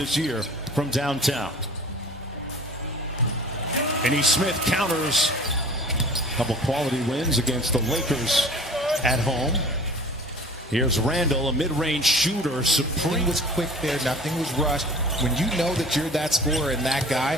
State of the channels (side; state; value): both; normal; correlation 0.45